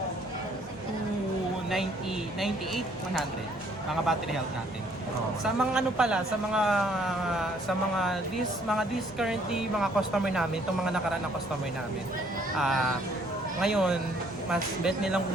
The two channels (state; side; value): normal; both; correlation 0.63